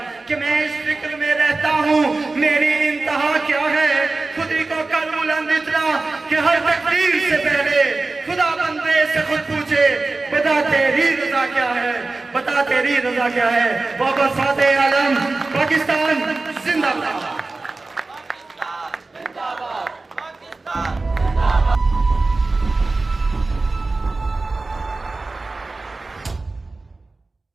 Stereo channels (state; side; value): quieter; left; 3.4 dB